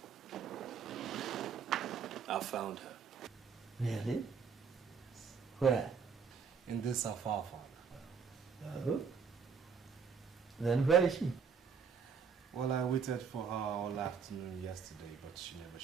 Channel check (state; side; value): quieter; left; 6.2 dB